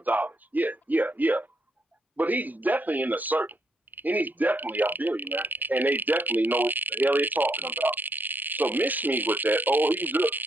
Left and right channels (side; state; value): both; normal; correlation 0.75